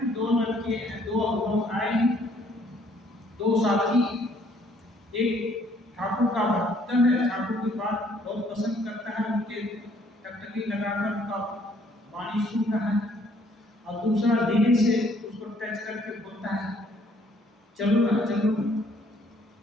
दो लोग आए हैं, दो साथी। एक ठाकुर का भक्त है, ठाकुर की बात बहुत पसंद करता है, उनके टकटकी लगाकर उनका वाणी सुन रहा है। और दूसरा धीरे से उसको टच करके बोलता है, चलो ना।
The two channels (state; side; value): normal; both; correlation 0.63